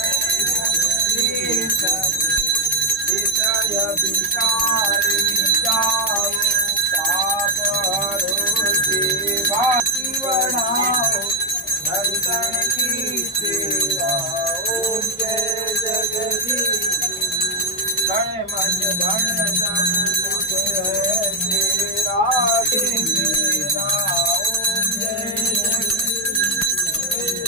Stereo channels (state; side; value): normal; both; correlation 0.03